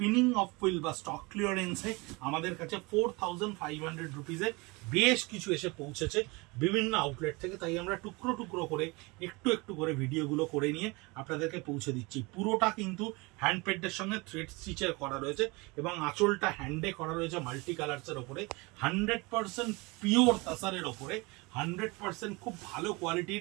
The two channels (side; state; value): left; quieter; 25.7 dB